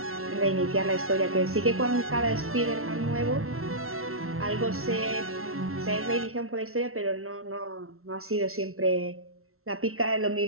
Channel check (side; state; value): left; late; 0.62 ms